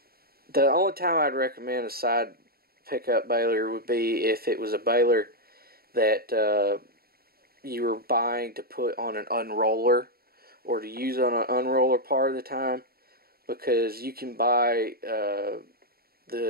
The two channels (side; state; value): left; late; 0.44 ms